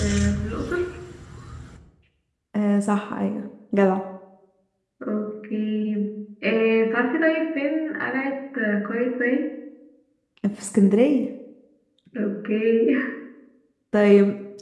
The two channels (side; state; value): both; identical; correlation 1.00